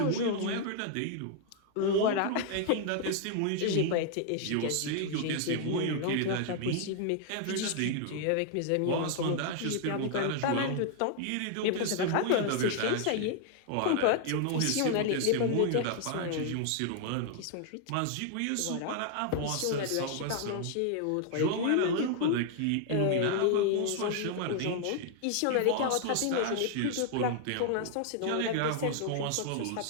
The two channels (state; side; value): different; both; correlation 0.00